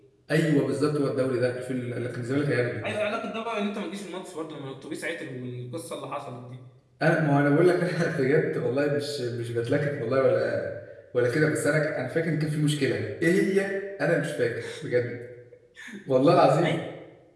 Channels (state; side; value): identical; both; correlation 1.00